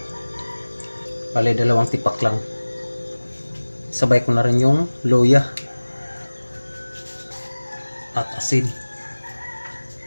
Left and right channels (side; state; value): both; inverted; correlation -1.00